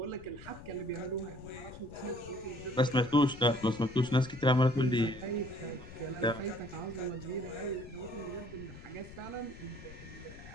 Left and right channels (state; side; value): noise; left; rumble, 15 dB below the sound